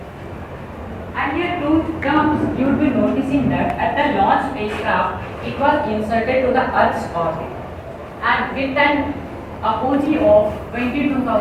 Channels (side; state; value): both; identical; correlation 1.00